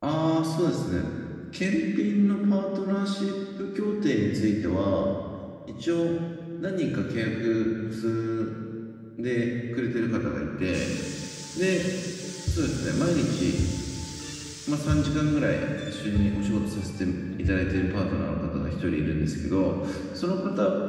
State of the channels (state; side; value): identical; both; correlation 1.00